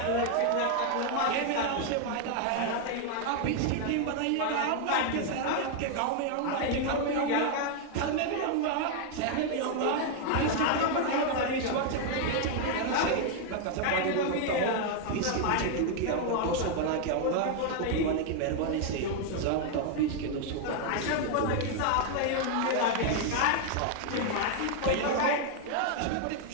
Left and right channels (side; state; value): both; different; correlation 0.00